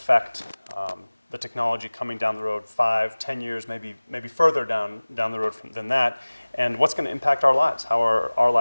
the technology coming down the road 5, 10 years, maybe further down the road than that, and what's going to impact our lives, how are our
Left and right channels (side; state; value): both; inverted; correlation -1.00